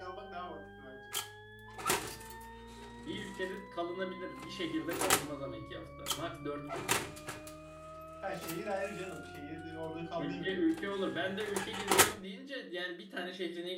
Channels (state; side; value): identical; both; correlation 1.00